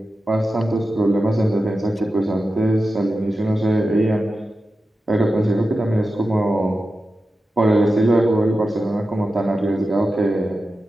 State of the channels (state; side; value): normal; both; correlation 0.92